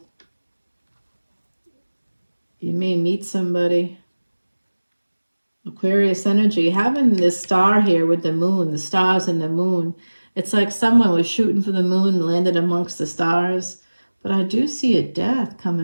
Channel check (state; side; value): inverted; both; correlation -1.00